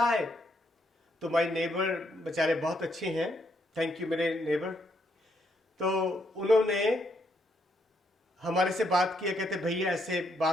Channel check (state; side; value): normal; both; correlation 0.75